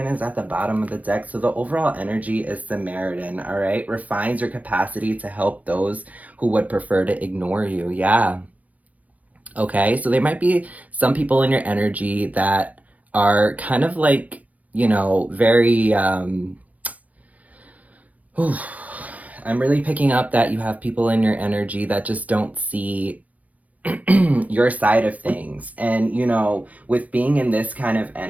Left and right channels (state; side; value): late; left; 0.074 ms